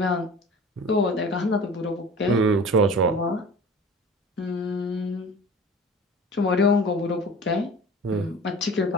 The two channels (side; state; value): both; normal; correlation 0.40